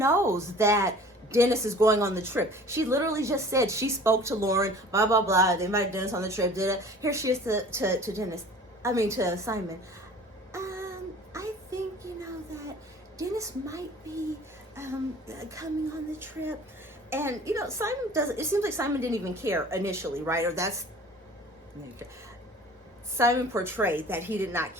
that Dennis is going on the trip. She literally just said she spoke to Lauren, blah, blah, blah. They invited Dennis on the trip. Here she is to Dennis. I mean, to Simon. I think, you know, that Dennis might be coming on the trip. And, you know, Simon doesn't, it seems like Simon didn't even care initially, right? Or that's, Simon portrayed that he did not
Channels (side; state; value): both; normal; correlation 0.46